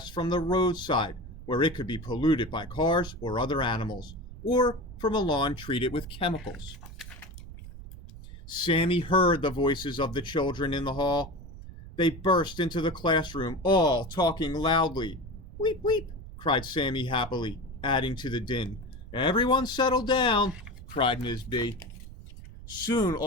from the roadside, where it could be polluted by cars or other animals, or from a lawn treated with chemicals. Sammy heard the voices of the children in the hall. They burst into the classroom, all talking loudly. Weep, weep, cried Sammy happily, adding to the din. Everyone settle down, cried Ms. B. Soon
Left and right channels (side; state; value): right; noise; rumble, 15 dB below the sound